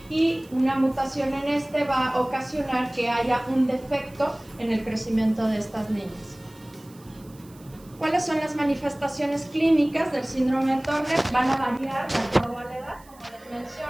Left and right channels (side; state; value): right; noise; hiss, 26 dB below the sound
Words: y una mutación en este va a ocasionar que haya un defecto en el crecimiento de estas niñas. ¿Cuáles son las manifestaciones clínicas del síndrome de Turner? Van a variar de acuerdo a la edad, como les